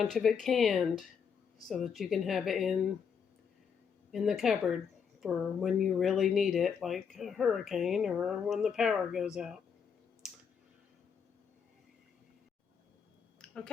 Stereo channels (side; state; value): right; quieter; 6.8 dB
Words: of it canned so that you can have it in the cupboard for when you really need it, like a hurricane or when the power goes out.